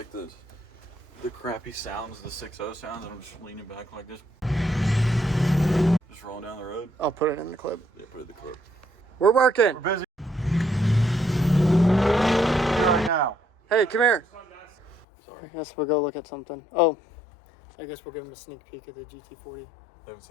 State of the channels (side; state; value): right; drops out; at 15.1 s